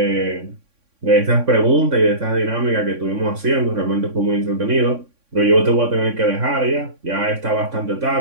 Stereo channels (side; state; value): left; late; 3.6 ms